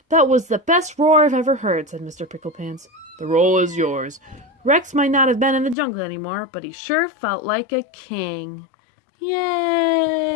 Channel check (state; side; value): drops out; right; at 5.8 s